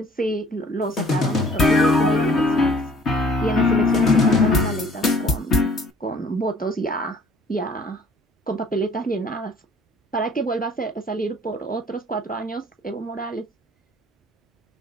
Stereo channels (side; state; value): both; normal; correlation 0.55